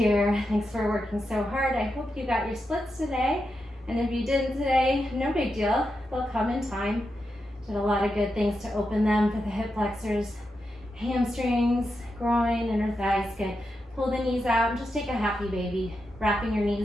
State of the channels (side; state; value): both; normal; correlation 0.87